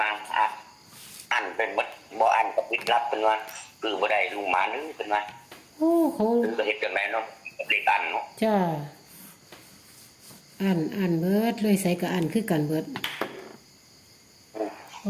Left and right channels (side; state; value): both; identical; correlation 1.00